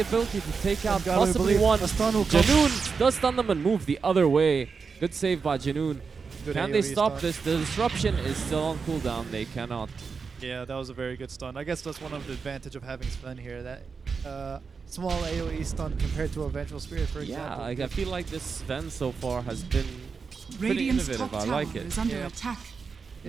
to take out Gotta possibly believe one. a stun will come. Janoon does stun them and move the other way. Good save by Janoon. Good Can they AoE stop stun. this? The disruption is still on cooldown. They cannot. Yeah, that was a very good stun. I guess that's one of the advantage of having Sven here. That small AoE stun compared to a Vengeful Spirit, for example. Yeah, I feel like this Sven so far has been pretty Radiant's innovative. top I tower like it. is under Yeah. attack.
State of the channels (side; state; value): left; quieter; 5.2 dB